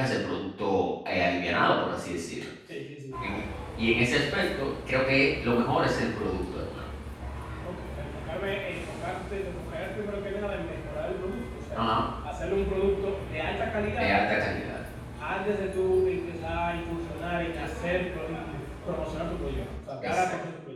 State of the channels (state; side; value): identical; both; correlation 1.00